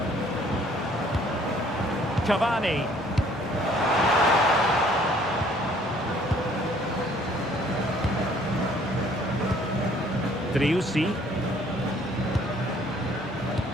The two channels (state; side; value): normal; both; correlation 0.59